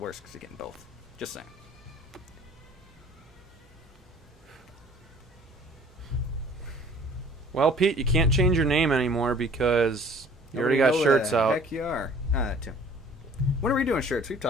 because you're getting both. Just saying. Well, Pete, you can't change your name anymore because you already got shirts out. Heck, you are. Tim. When are we doing shirts? We've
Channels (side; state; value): both; normal; correlation 0.51